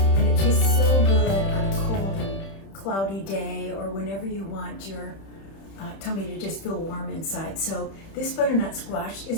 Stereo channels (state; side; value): late; right; 31 ms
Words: and it tastes so good on a cold and cloudy day, or whenever you want your tummy to just feel warm inside. So this butternut squash